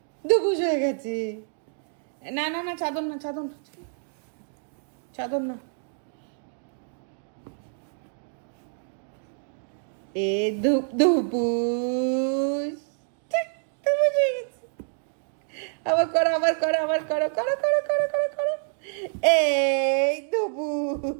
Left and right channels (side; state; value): left; silent; digital silence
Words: দুবুস হয়ে গেছে। না না না, চাদর না, চাদর না, চাদর না। এ ধুপ ধুপুস, ঠিক, দুবুস হয়ে গেছে। আবার করো, আবার করো, আবার করো, করো করো করো করো করো। এই